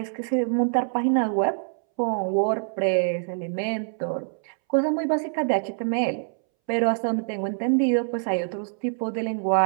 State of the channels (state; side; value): silent; left; 62 dB below the other